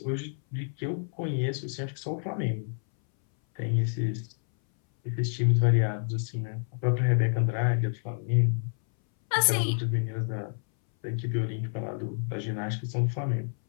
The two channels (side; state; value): right; silent; 59 dB below the other